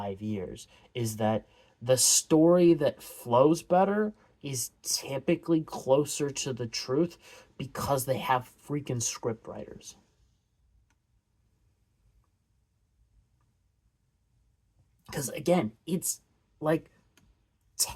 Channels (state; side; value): identical; both; correlation 1.00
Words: years is that the story that flows better is typically closer to the truth because they have freaking script writers. Because again, it's like